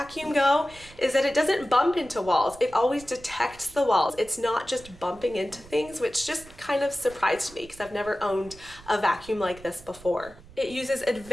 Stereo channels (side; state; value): right; noise; rumble, 21 dB below the sound